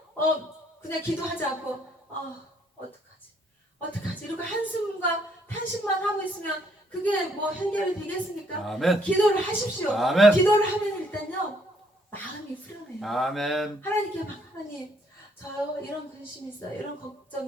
그냥 기도하지 않고 어떡하지 이렇게 한숨과 탄식만 하고 있으면 그게 뭐 해결이 되겠습니까? 아멘. 기도를 하십시오. 아멘. 기도를 하면 일단요 마음이 후련해요. 아멘. 하나님께 막 하나님 저요 이런 근심이 있어요, 이런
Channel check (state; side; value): normal; both; correlation 0.68